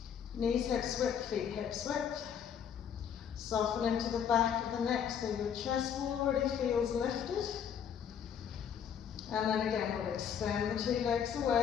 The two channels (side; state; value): right; quieter; 8.2 dB